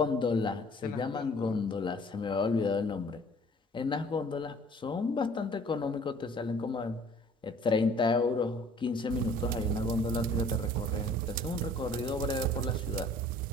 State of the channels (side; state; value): both; normal; correlation 0.53